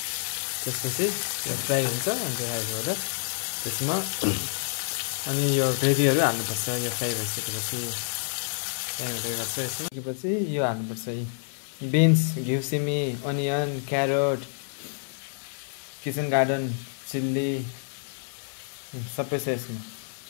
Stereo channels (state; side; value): silent; right; 59 dB below the other